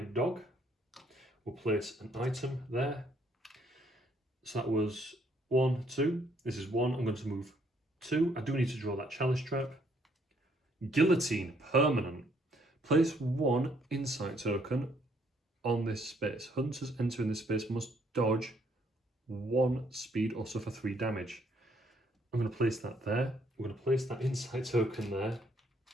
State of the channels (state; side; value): normal; both; correlation 0.68